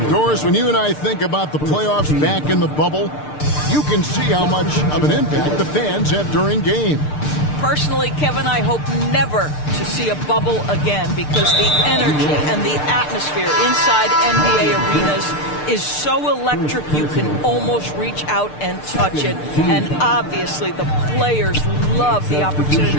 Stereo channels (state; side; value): late; right; 6.7 ms